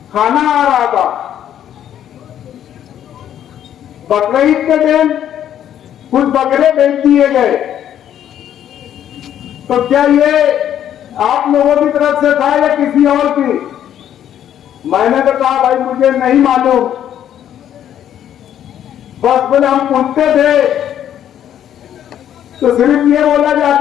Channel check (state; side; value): quieter; right; 10.4 dB